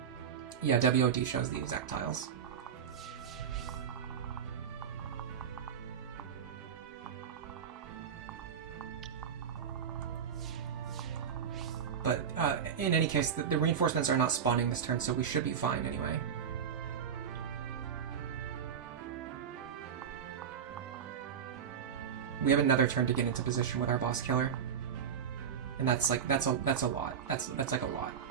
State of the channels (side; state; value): left; quieter; 7.6 dB